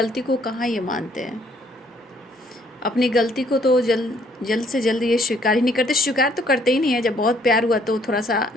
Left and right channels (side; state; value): both; normal; correlation 0.65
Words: को कहाँ ये मानते हैं। अपनी गलती को तो जल्द से जल्द ये स्वीकार ही नहीं करते। स्वीकार तो करते ही नहीं है। जब बहुत प्यार हुआ तो थोड़ा सा